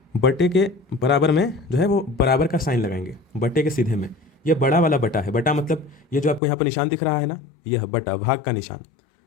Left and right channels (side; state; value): right; drops out; at 6.4 s